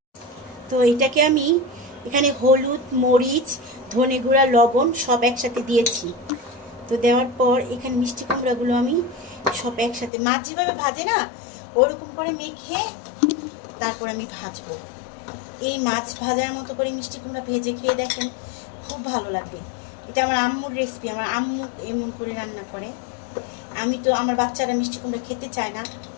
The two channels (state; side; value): drops out; right; at 10.1 s